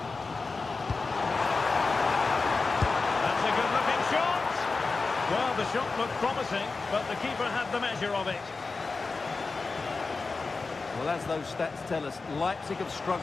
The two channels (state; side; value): quieter; right; 4.1 dB